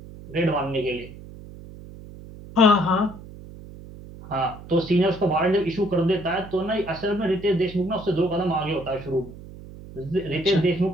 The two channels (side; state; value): right; noise; hum, 16 dB below the sound